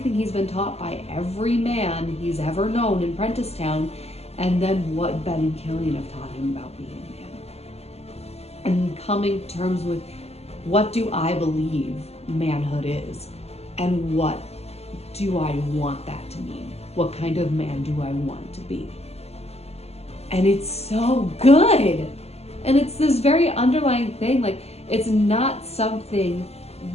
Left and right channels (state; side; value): late; right; 0.30 ms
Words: he's been taught by every man he's ever known in Prenticetown, and then what Ben and Killian have taught him about being a man. And coming to terms with, what do I believe manhood is? And what do I want that to mean? What kind of man do I want to be? And it's so good. And it's this very underlying thing, like, it's not something